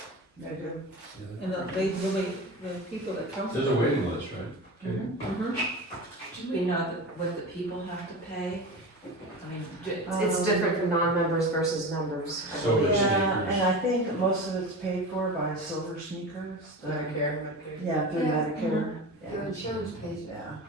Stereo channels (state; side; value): normal; both; correlation 0.29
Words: They do. and they really, the people that come. There's a waiting list, right? Okay. Mhm. Do we know what the people have to pay? I mean, It's different for non-members versus members, I So believe. it's- Yeah, sneakers. and I think most of it's paid for by Silver Sneakers. Medicare. Yeah, through Yeah. Medicare. Their insurance pays it. Yeah,